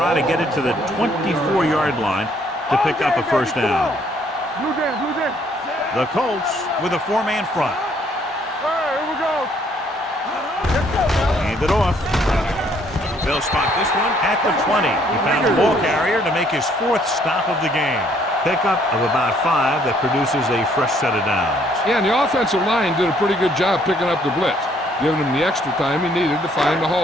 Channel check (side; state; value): both; normal; correlation 0.65